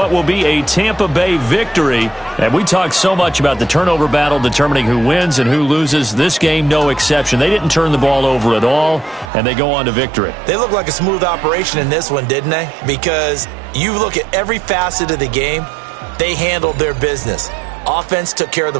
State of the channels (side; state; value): left; drops out; at 9.3 s